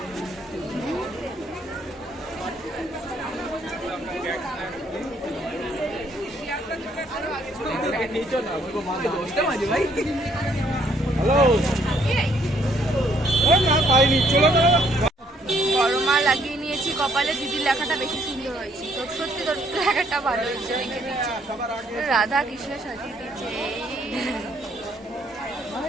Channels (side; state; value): both; normal; correlation 0.67